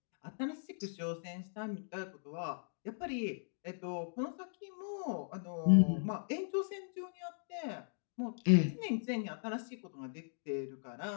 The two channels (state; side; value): silent; right; digital silence